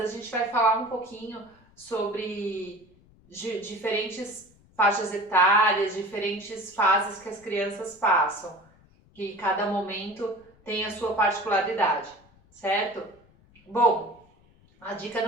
a gente vai falar um pouquinho sobre diferentes faixas etárias, diferentes fases que as crianças passam, que cada momento tem a sua particularidade, certo? Bom, a dica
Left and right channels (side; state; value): left; noise; rumble, 29 dB below the sound